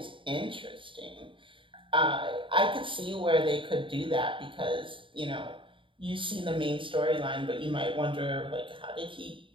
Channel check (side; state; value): left; late; 0.25 ms